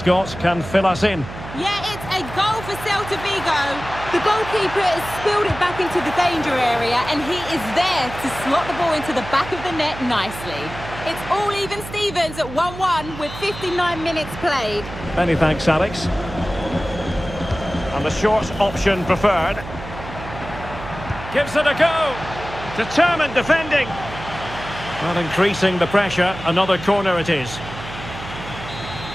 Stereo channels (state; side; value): noise; right; hum, 12 dB below the sound